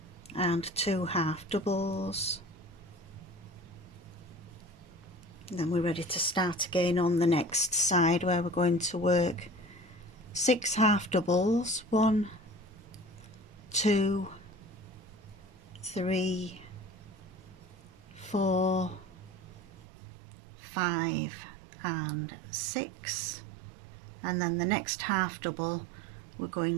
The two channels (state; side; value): drops out; left; at 19.9 s